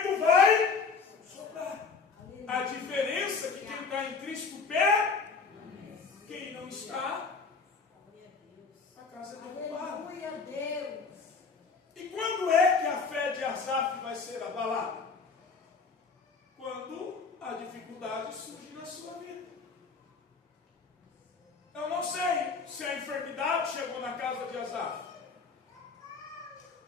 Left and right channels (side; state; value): right; quieter; 4.8 dB